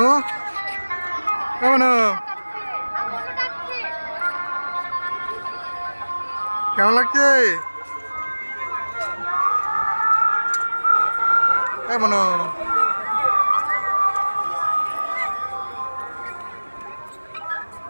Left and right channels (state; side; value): inverted; both; correlation -1.00